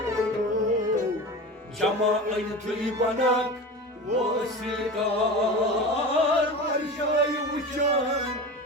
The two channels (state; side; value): normal; both; correlation 0.30